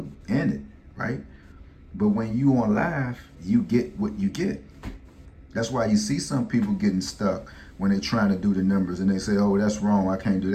end it, right? But when you on live, you get what you get. That's why you see some people getting stuck when they're trying to do the numbers and they say, oh, that's wrong, I can't do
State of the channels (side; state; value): both; identical; correlation 1.00